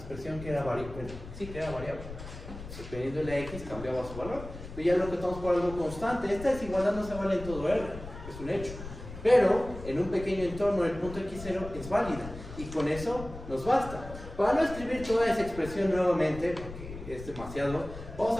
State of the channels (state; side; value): noise; left; rumble, 12 dB below the sound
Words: que era variable. Sí, que era variable. Dependiendo de la x cambiaba su valor. Pero ya lo acotamos por algo constante. Esta desigualdad no se vale en todo R, es un hecho. Pero en un pequeño entorno el punto x0 es válida. Y con eso nos basta. Para no escribir toda esa expresión nuevamente, porque es demasiado,